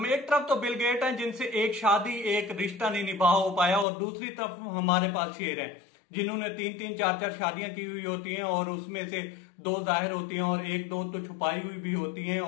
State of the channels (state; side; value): drops out; right; at 3.9 s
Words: एक तरफ तो बिल गेट हैं जिनसे एक शादी एक रिश्ता नहीं निभा हो पाया, और दूसरी तरफ हमारे पास शेर हैं जिन्होंने तीन तीन चार चार शादियां की हुई होती हैं, और उसमें से दो जाहिर होती हैं और एक दो तो छुपाई हुई भी होती हैं।